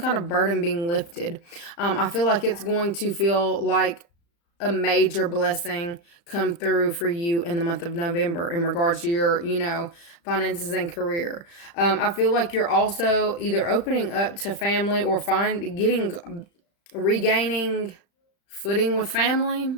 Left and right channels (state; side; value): late; right; 35 ms